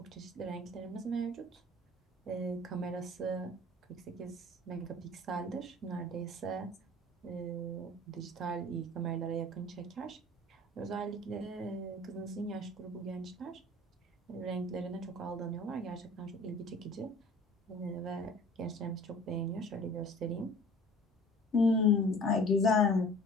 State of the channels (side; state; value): both; normal; correlation 0.46